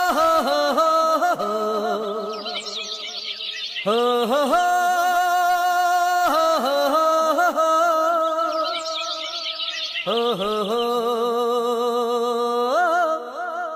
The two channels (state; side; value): identical; both; correlation 1.00